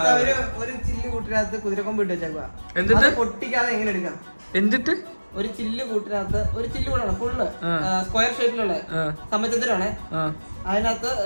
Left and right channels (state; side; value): inverted; both; correlation -1.00